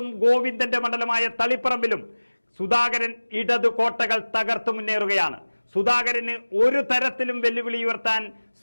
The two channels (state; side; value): inverted; both; correlation -1.00